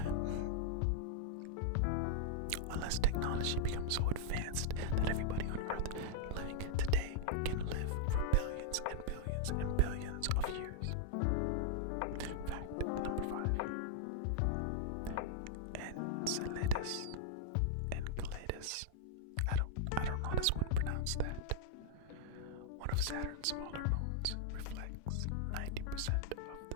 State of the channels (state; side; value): different; both; correlation -0.01